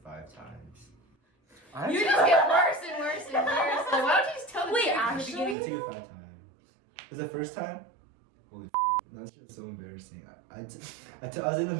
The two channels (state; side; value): drops out; left; at 5.6 s